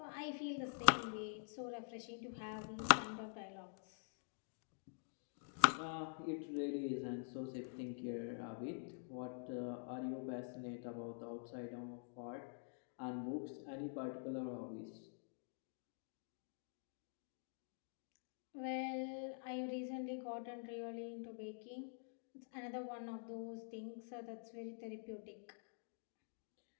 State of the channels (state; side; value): silent; right; digital silence